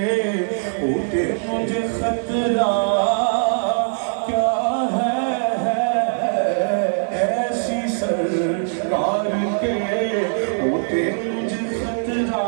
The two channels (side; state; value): left; silent; digital silence